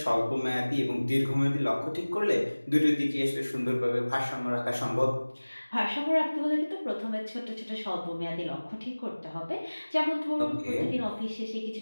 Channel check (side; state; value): both; inverted; correlation -1.00